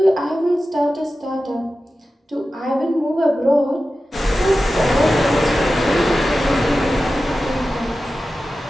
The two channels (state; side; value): normal; both; correlation 0.94